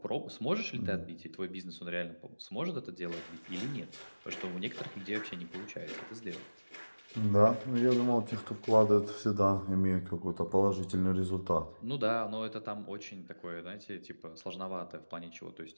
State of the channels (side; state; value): both; inverted; correlation -1.00